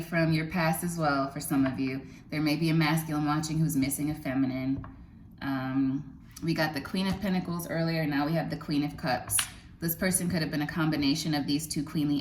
from your past as well for some of you. There may be a masculine watching who's missing a feminine. We got the Queen of Pentacles earlier. Now we have the Queen of Cups. This person could have been a combination of these two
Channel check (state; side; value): identical; both; correlation 1.00